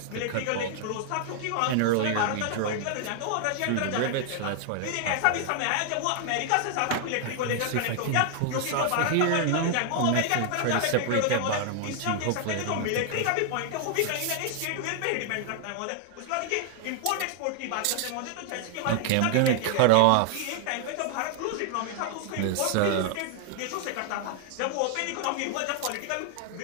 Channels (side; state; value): both; different; correlation 0.00